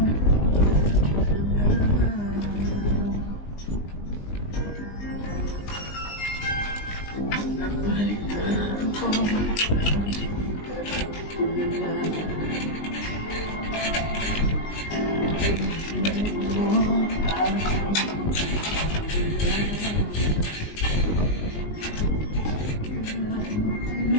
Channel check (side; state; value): right; late; 19 ms